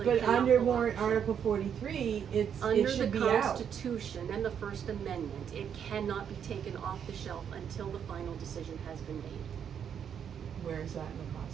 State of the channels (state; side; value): quieter; left; 8.2 dB